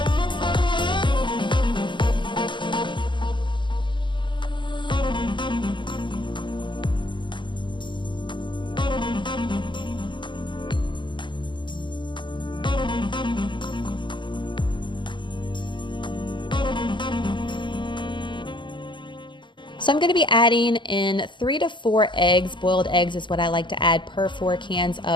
So I'm going to be adding in 3 to 4 eggs. Boiled eggs is what I like to add per 4 cans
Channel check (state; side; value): late; right; 0.23 ms